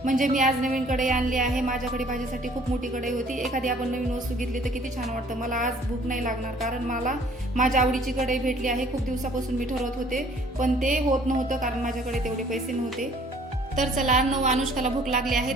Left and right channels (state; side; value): normal; both; correlation 0.56